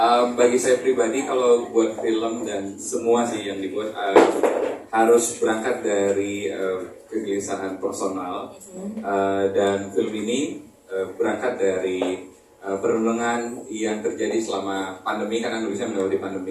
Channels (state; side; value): identical; both; correlation 1.00